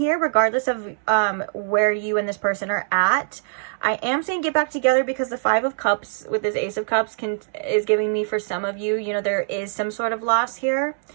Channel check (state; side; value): silent; left; 64 dB below the other